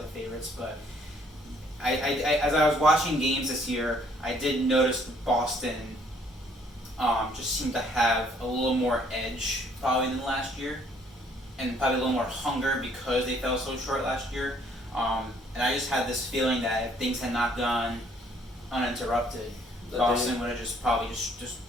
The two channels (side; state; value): both; normal; correlation 0.63